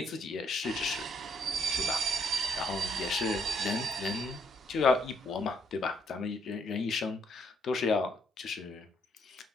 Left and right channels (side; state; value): both; normal; correlation 0.70